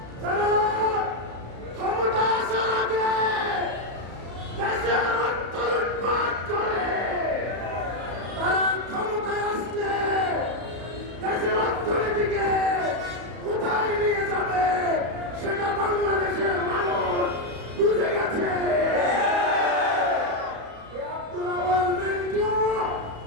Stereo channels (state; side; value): late; left; 34 ms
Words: যারা ক্ষমতা আসার আগে দেশের অর্থ লুটপাট করে, তারা ক্ষমতায় আসলে দেশের অর্থনীতিকে কোথায় নিয়ে যাবে সেটা বাংলাদেশের মানুষ বুঝে গেছে। আব্দুল আওয়াল মিন্টু